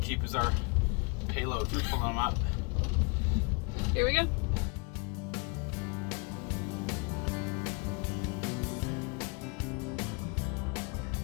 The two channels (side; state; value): right; quieter; 31.5 dB